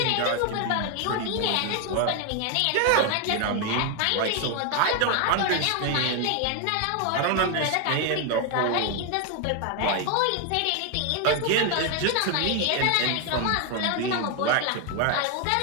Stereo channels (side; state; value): both; different; correlation 0.01